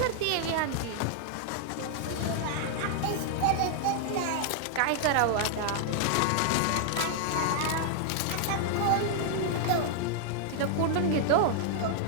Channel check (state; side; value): different; both; correlation 0.00